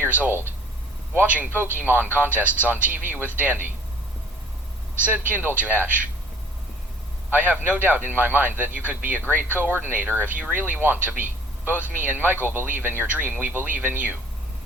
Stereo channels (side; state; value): both; normal; correlation 0.54